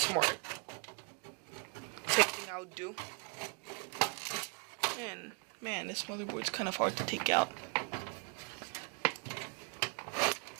Same thing I would do. And man, this motherboard's kind of hard to take out.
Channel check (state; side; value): quieter; left; 34.8 dB